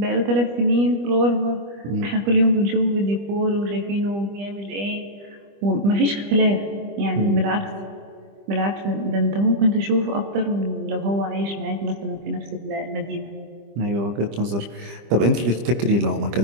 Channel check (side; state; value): left; late; 25 ms